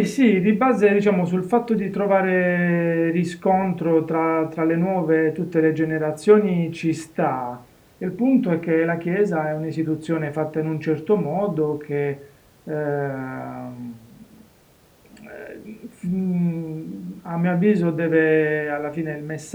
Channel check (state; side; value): identical; both; correlation 1.00